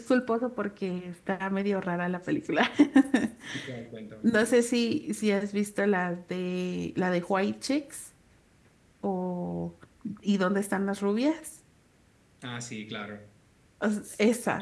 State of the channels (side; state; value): both; identical; correlation 1.00